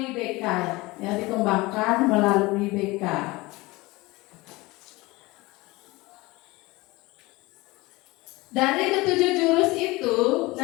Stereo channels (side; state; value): right; quieter; 21.8 dB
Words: BK ya, dikembangkan melalui BK. Dari ketujuh jurus itu